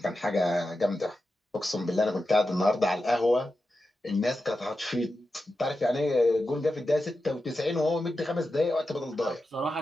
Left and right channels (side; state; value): both; normal; correlation 0.90